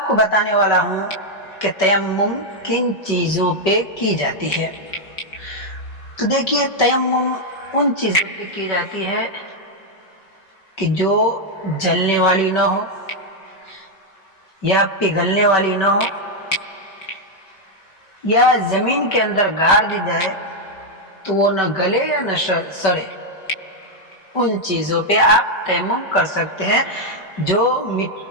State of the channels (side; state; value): right; late; 5.2 ms